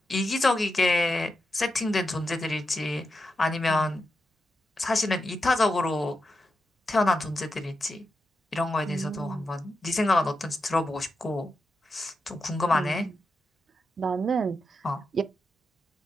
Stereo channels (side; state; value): both; normal; correlation 0.87